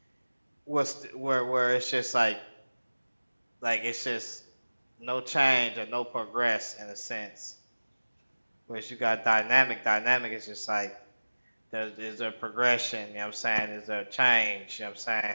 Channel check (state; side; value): inverted; both; correlation -1.00